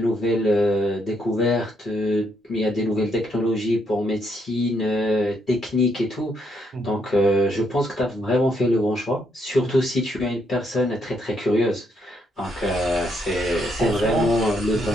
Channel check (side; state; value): both; normal; correlation 0.74